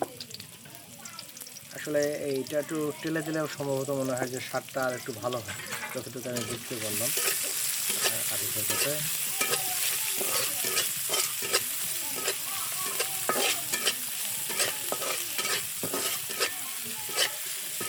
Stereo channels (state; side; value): identical; both; correlation 1.00